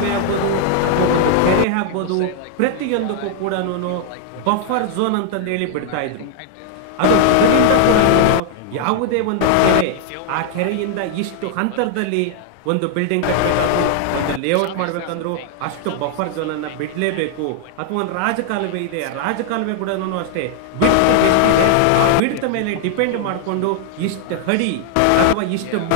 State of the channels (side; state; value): both; different; correlation 0.00